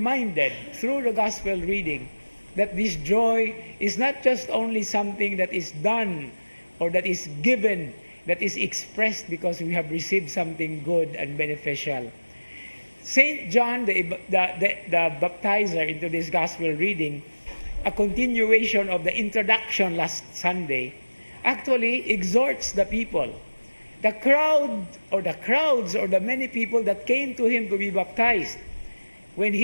through the gospel reading that this joy is not just only something that is done or that is given, that is expressed because we have received something good and beneficial. St. John, the baptizer into this gospel reading, a continuation of the introduction last Sunday, actually exhorts the people. The crowds or the many people that came to him to be baptized, when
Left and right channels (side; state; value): both; inverted; correlation -1.00